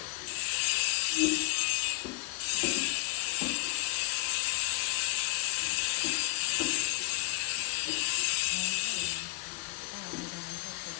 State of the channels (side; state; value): right; quieter; 23.1 dB